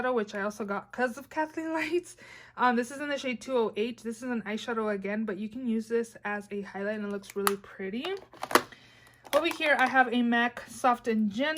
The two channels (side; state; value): both; identical; correlation 1.00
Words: which I also got because of Kathleen Lights. This is in the shade 208. This is an eyeshadow again, but you can use this as a highlight and it looks really pretty. Over here, I have a MAC Soft and